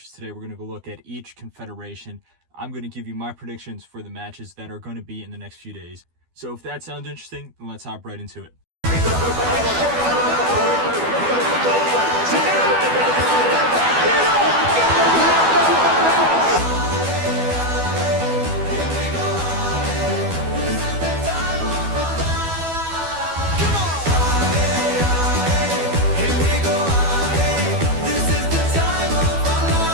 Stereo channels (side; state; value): left; late; 12 ms